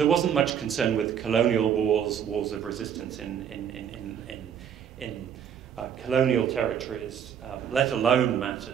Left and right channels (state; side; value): quieter; left; 8.4 dB